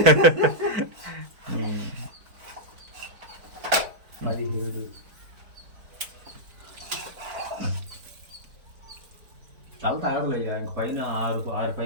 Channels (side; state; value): left; late; 4.5 ms